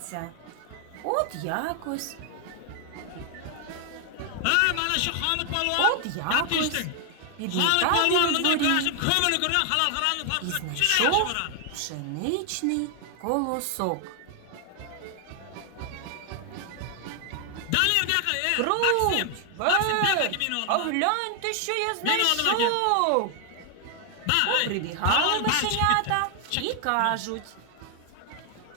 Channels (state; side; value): different; both; correlation 0.00